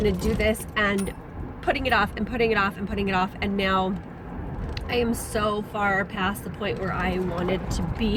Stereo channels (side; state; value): both; identical; correlation 1.00